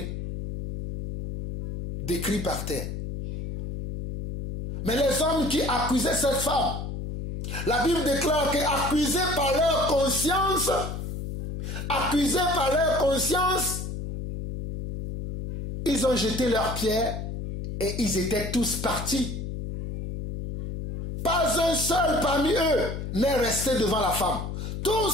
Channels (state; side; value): noise; left; hum, 6 dB below the sound